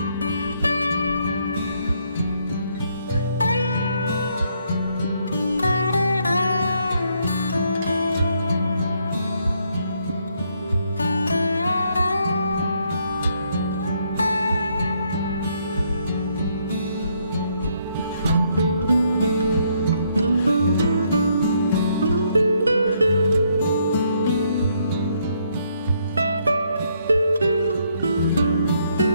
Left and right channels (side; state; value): both; inverted; correlation -0.72